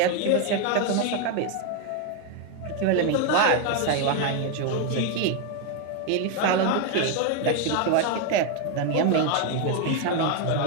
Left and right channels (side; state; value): both; different; correlation 0.01